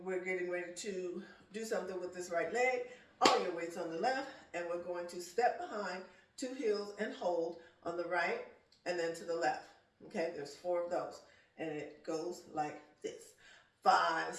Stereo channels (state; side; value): identical; both; correlation 1.00